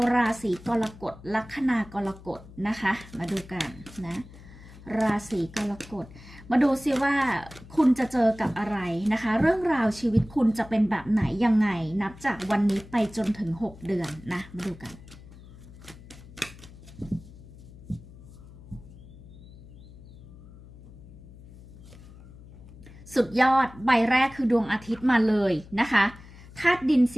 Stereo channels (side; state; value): left; noise; hum, 19 dB below the sound